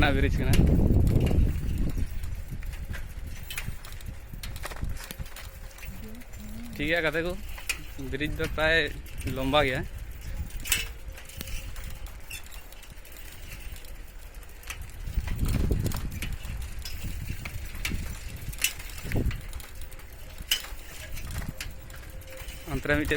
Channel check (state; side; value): identical; both; correlation 1.00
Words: ना bridge करना ठीक है कहते को bridge तो प्राय लंबा गया अंतरा मिटे